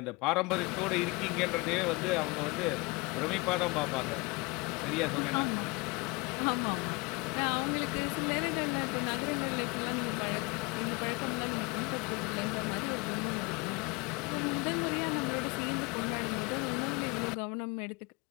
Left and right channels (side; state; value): right; quieter; 26.9 dB